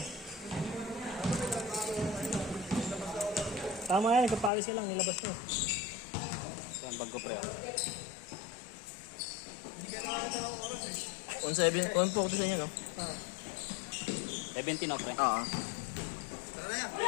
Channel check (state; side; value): drops out; right; at 4.5 s